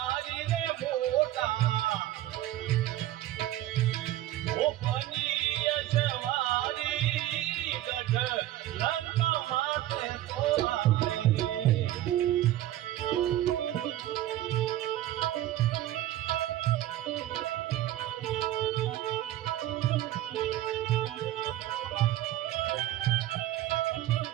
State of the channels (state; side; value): quieter; left; 14.1 dB